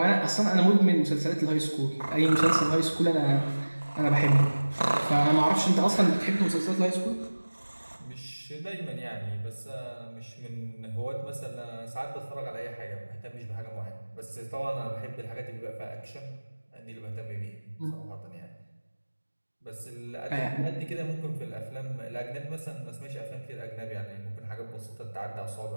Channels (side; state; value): both; inverted; correlation -1.00